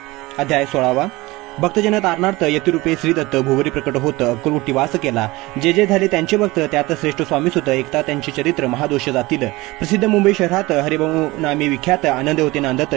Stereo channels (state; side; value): quieter; left; 21.1 dB